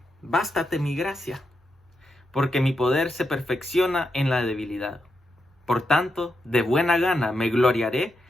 bástate mi gracia, porque mi poder se perfecciona en la debilidad. Por tanto, de buena gana me gloriaré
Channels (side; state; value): both; normal; correlation 0.84